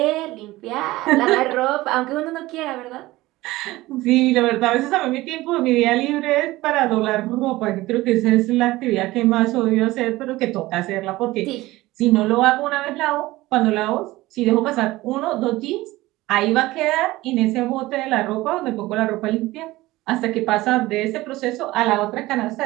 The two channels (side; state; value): left; quieter; 18.5 dB